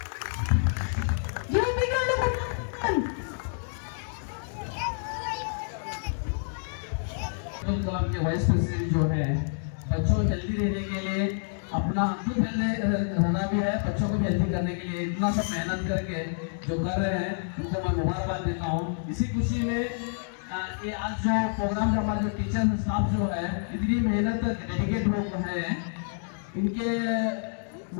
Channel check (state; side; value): silent; right; digital silence